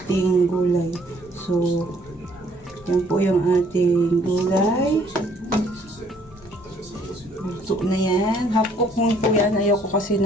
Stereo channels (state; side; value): normal; both; correlation 0.63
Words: gulay. So, yan po yung ating gulay. Luto na yan. Half cook mo po yan. Ayoko kasi